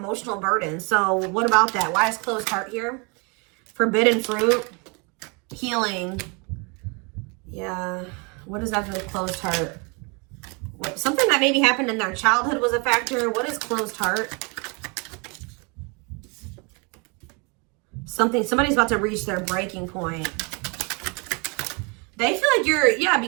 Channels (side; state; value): left; quieter; 31.9 dB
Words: burden. So what about that? Why is closed heart here? Forbidden fruit, healing. Yeah. What does that do with closed heart? Something that maybe happened in their childhood was a factor. What is closed heart? Somebody's about to reach their breaking point. They feel like you're, yeah,